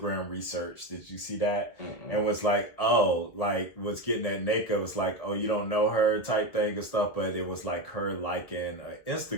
research. Did you see that? Mm-mm. And was like, was getting at Nneka, was like, oh, you don't know her type thing and stuff. But it was like her liking an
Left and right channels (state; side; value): late; right; 1.9 ms